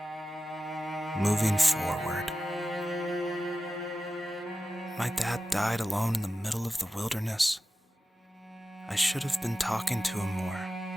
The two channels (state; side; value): normal; both; correlation 0.93